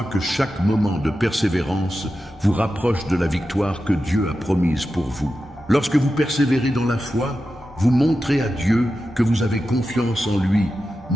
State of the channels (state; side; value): normal; both; correlation 0.91